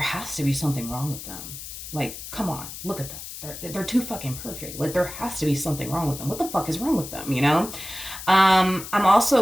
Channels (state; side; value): noise; left; hiss, 11 dB below the sound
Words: to be something wrong with them. Like, come on, look at them. They're too fucking perfect. Like there has to be something wrong with them. What the fuck is wrong with them? You know? I'm